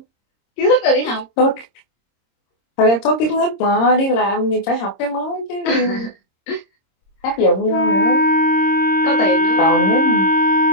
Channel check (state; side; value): late; right; 26 ms